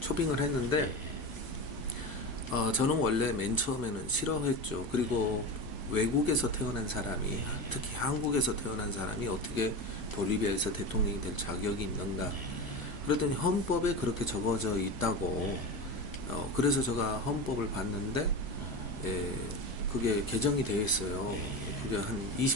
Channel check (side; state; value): right; late; 1.1 ms